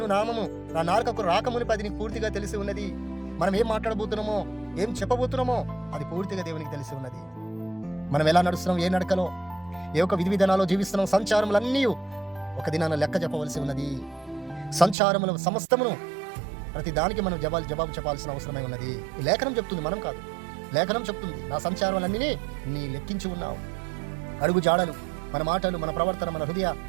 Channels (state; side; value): drops out; left; at 15.0 s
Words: నామము నా నాలుకకు రాకమునిపై అది నీకు పూర్తిగా తెలిసి ఉన్నది. మనం ఏం మాట్లాడబోతున్నామో, ఏం చెప్పబోతున్నామో అది పూర్తిగా దేవునికి తెలిసి ఉన్నది. మనం ఎలా నడుస్తున్నాం, ఏ నడకలో, ఏ ఒక విధి విధానాల్లో జీవిస్తున్నాం, సంచారములన్నీ ఒక దినాన లెక్క చెప్పవలసి ఉన్నది. సంచారముల సమస్తమును ప్రతి దానికి మనం జవాబు చెప్పాల్సిన అవసరమై ఉన్నది. ఈ లేఖనం చెప్తుంది, మనం కాదు. లేఖనం చెప్తుంది, నా సంచారములన్నీ నీ లెక్కించి ఉన్నావు. అడుగు జాడలు, మన మాటలు, మన ప్రవర్తన, మన హృదయ